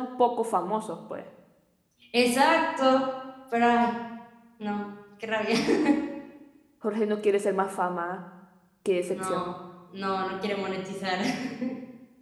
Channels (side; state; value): both; identical; correlation 1.00